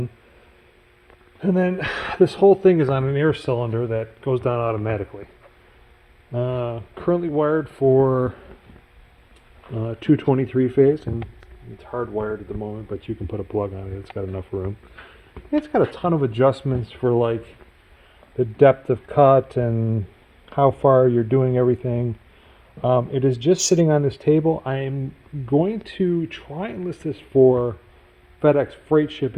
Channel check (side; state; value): both; identical; correlation 1.00